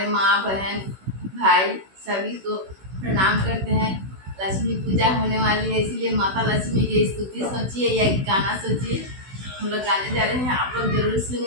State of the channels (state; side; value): late; left; 16 ms